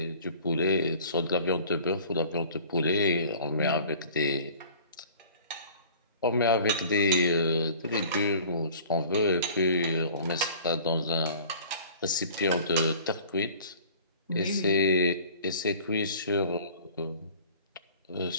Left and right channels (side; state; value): both; inverted; correlation -0.47